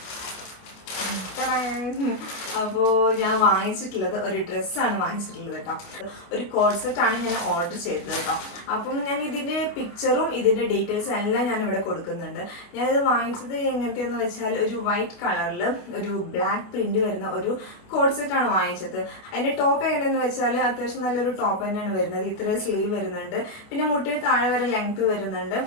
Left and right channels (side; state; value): right; late; 29 ms